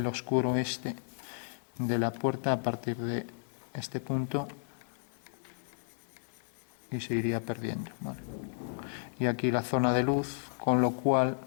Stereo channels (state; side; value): silent; right; 56 dB below the other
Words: oscuro este de la puerta a partir de este punto y se iría perdiendo, ¿vale? Y aquí la zona de luz, con lo cual